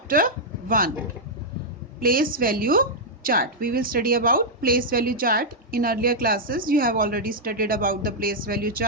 1, place value chart. We will study about place value chart. In earlier classes, you have already studied about the place value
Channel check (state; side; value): normal; both; correlation -0.06